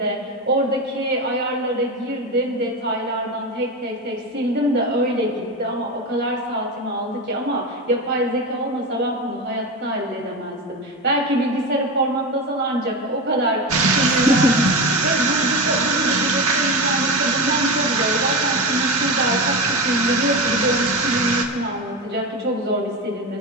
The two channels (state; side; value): normal; both; correlation 0.20